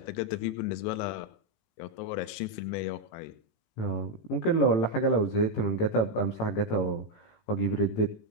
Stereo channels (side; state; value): right; late; 19 ms